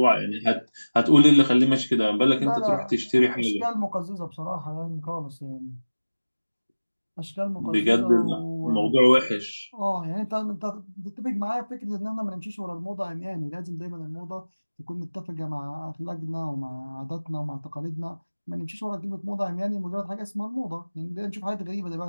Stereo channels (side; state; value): both; inverted; correlation -1.00